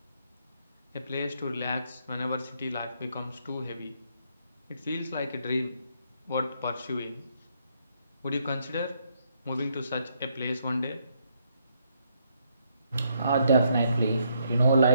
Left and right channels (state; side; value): inverted; both; correlation -0.74